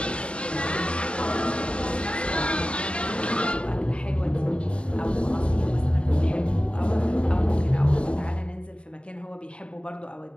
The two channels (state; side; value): late; right; 0.057 ms